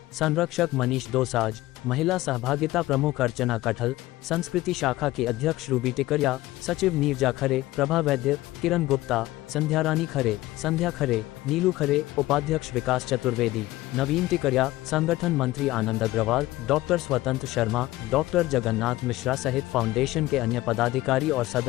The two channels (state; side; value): quieter; right; 17.4 dB